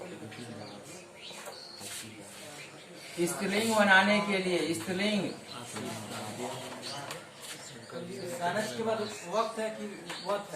स्त्रीलिंग बनाने के लिए, स्त्रीलिंग के बाद वक्त है कि वक्त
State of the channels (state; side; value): identical; both; correlation 1.00